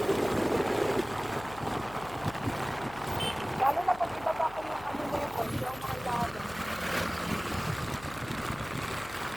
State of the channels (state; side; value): noise; left; hum, 17 dB below the sound